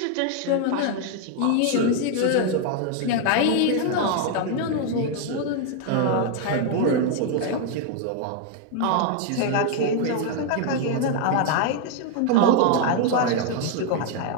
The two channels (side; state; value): both; different; correlation 0.00